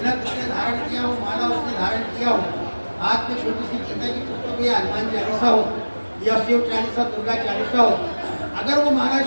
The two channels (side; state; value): both; inverted; correlation -1.00